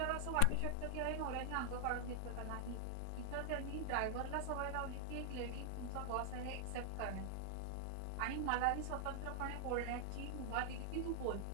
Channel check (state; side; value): different; both; correlation 0.00